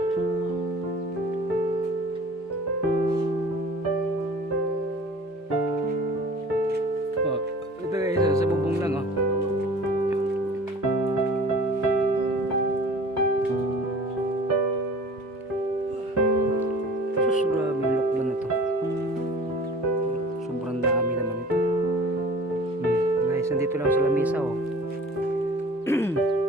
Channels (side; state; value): both; normal; correlation 0.44